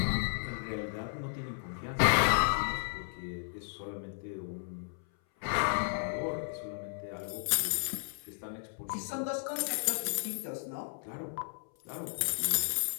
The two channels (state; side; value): silent; right; 55 dB below the other